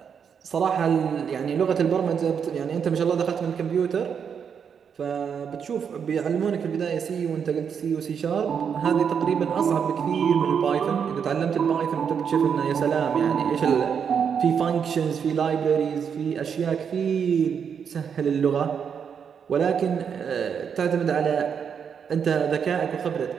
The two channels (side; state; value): left; quieter; 7.1 dB